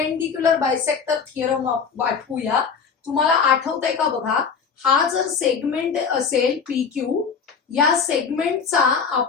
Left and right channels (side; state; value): right; quieter; 6.1 dB